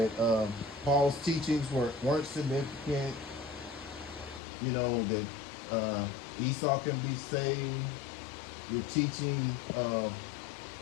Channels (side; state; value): right; drops out; at 4.4 s